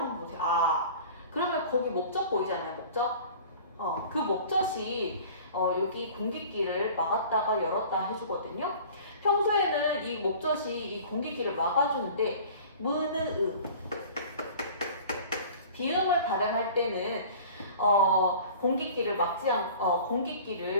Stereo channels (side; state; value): both; inverted; correlation -0.43